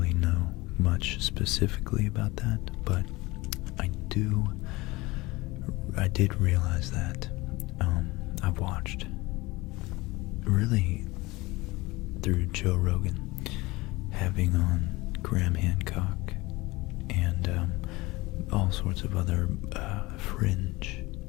know much specifically about that, but I did realize that I've watched, really through Joe Rogan, having on Graham Hancock and all sorts of other fringe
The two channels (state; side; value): quieter; right; 21.6 dB